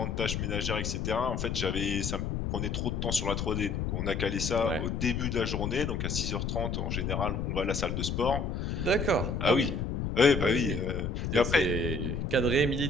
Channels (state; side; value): noise; left; rumble, 2 dB below the sound